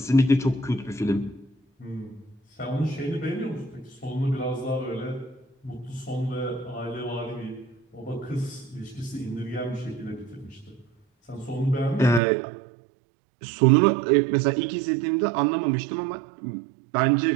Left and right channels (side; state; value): left; drops out; at 12.2 s